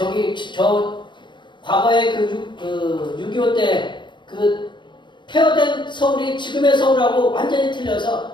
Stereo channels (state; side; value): late; right; 0.23 ms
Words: 과거에 6.25 때 폐허된 서울이 지금의 서울하고 완전히 틀려서